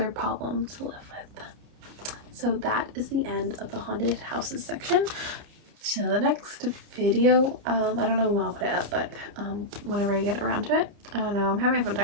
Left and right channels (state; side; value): late; left; 30 ms